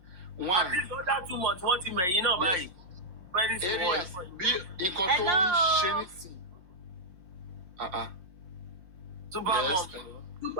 One. At least under 2 months, wọ́n ti mẹ̀yìn náà báyìí. Very small. Bí nǹkan tó ń ṣe nísìn. Supermom.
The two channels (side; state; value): left; late; 5.6 ms